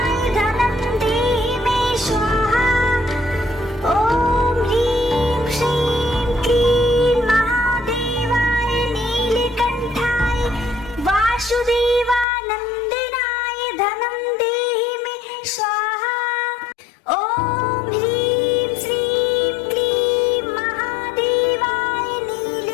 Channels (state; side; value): drops out; right; at 12.2 s